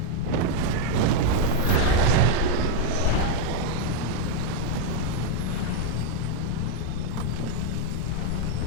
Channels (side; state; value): both; different; correlation 0.01